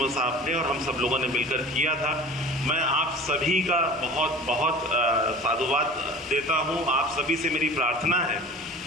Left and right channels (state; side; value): normal; both; correlation 0.40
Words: साहब ने और हम सब लोगों ने मिलकर किया था। मैं आप सभी का बहुत बहुत साधुवाद देता हूँ। आप सभी से मेरी प्रार्थना है